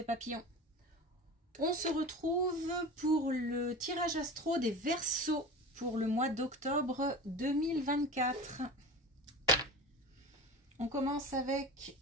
Papillon. On se retrouve pour le tirage astro des Verseaux pour le mois d'octobre 2024. On commence avec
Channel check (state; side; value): normal; both; correlation 0.32